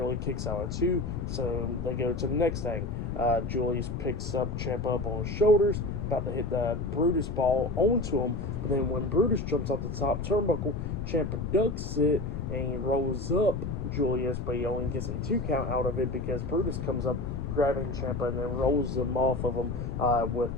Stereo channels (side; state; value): left; noise; rumble, 5 dB below the sound